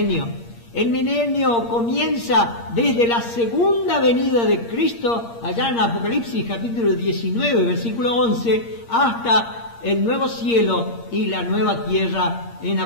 El milenio comienza desde la segunda venida de Cristo, allá en Apocalipsis capítulo 19, versículo 11, hasta el nuevo cielo y la nueva tierra en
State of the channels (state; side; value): late; right; 8.6 ms